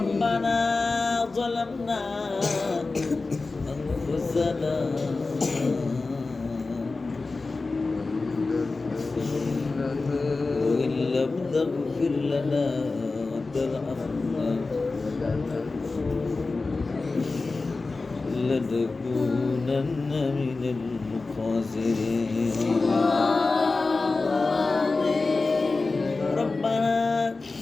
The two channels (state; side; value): quieter; right; 3.7 dB